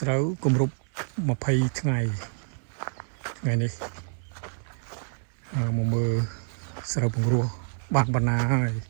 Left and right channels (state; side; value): silent; left; 60 dB below the other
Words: ្រូវគម្រប់20 ថ្ងៃនេះមកមើលស្រូវពង្រោះបានបណ្ណាហើយ